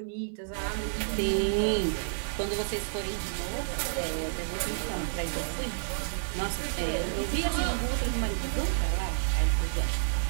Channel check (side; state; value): left; silent; digital silence